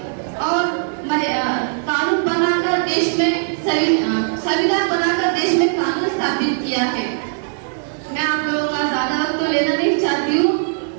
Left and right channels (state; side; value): silent; left; 61 dB below the other